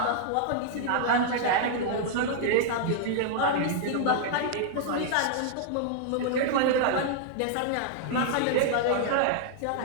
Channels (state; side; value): different; both; correlation -0.01